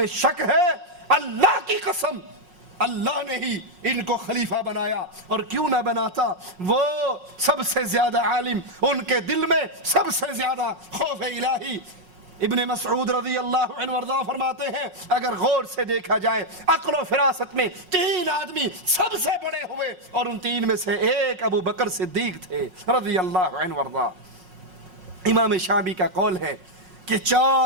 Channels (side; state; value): left; late; 5.5 ms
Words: شک ہے؟ اللہ کی قسم اللہ نے ہی ان کو خلیفہ بنایا، اور کیوں نہ بناتا، وہ سب سے زیادہ عالم، ان کے دل میں سب سے زیادہ خوف الہی۔ ابن مسعود رضی اللہ عنہ وارضاہ فرماتے ہیں اگر غور سے دیکھا جائے عقل و فراست میں 3 آدمی سب سے بڑے ہوئے، اور ان 3 میں سے ایک ابو بکر صدیق تھے رضی اللہ عنہ وارضاہ۔ امام شعبی کا قول ہے کہ